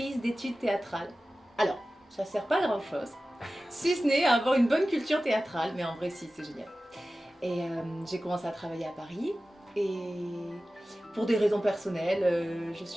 d'études théâtrales. Alors, ça sert pas à grand chose, si ce n'est à avoir une bonne culture théâtrale, mais en vrai si, c'est génial. Et j'ai commencé à travailler à Paris, et pour des raisons personnelles, je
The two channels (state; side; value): normal; both; correlation 0.96